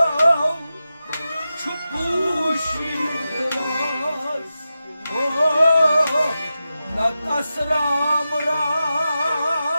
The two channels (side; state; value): both; inverted; correlation -0.92